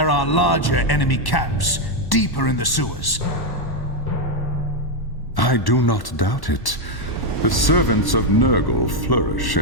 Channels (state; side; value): late; right; 1.1 ms